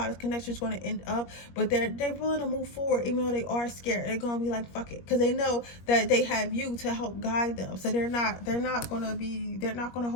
this connection is going to end up, but they're willing to move forward even though they are scared. They're going to be like, fuck it, because they know that they have you to help guide them. So they're not going to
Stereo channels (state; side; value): late; right; 21 ms